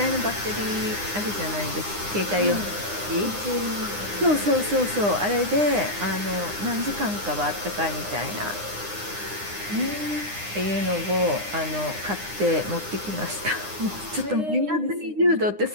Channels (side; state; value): left; late; 9.8 ms